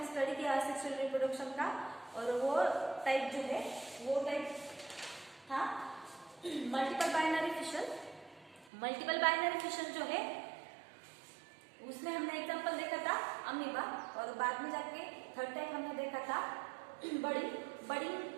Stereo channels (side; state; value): left; drops out; at 8.7 s